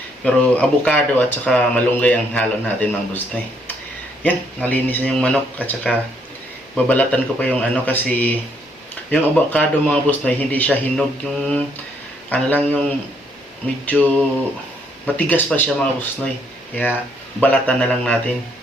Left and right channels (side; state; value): both; normal; correlation 0.70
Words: Pero avocado at saka malunggay ang halo natin mga boss noy. Yan, nalinis na yung manok at saka babalatan ko pa yung kasi yung avocado mga boss noy, hindi siya hinog, yung lang yung medyo matigas pa siya mga boss noy. Kaya balatan na lang natin.